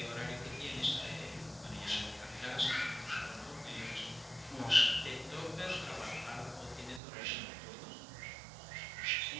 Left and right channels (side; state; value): left; drops out; at 7.0 s